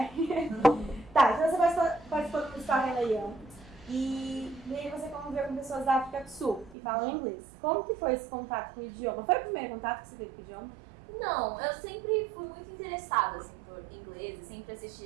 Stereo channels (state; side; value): drops out; left; at 6.8 s